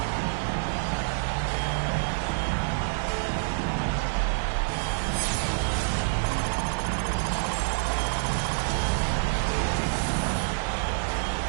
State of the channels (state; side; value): silent; left; digital silence